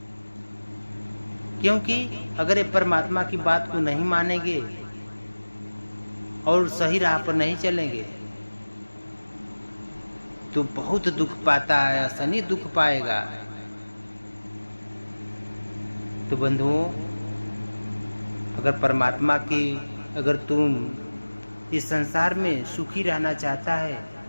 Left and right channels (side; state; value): both; inverted; correlation -1.00